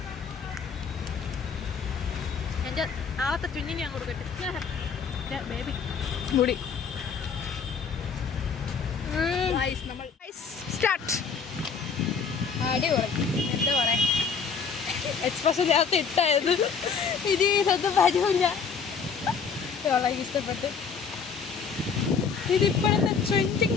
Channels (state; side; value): quieter; right; 5.9 dB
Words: എൻ്റെ നാളത്തെ ചുഞ്ഞിന് ഞാൻ കൊടുക്കട്ടെ ബേബി മുടി. നമ്മൾ സ്റ്റാർട്ട്. അടിപൊളി. എന്താ പറയാ, എക്സ്പ്രഷൻ നേരത്തെ ഇട്ടായത് ഇനി ഇതൊന്നും വരൂല. വളരെ ഇഷ്ടപ്പെട്ട്. ഇതിപ്പോഴത്തെ